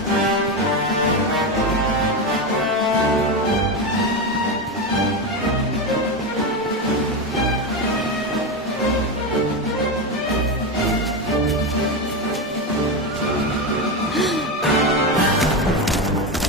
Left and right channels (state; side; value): normal; both; correlation 0.15